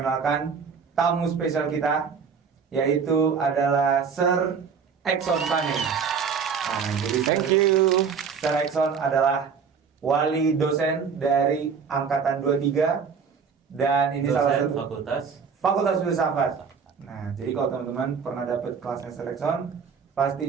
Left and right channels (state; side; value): quieter; left; 6.1 dB